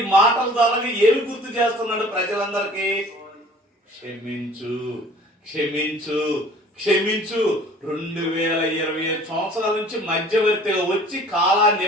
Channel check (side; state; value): both; normal; correlation 0.49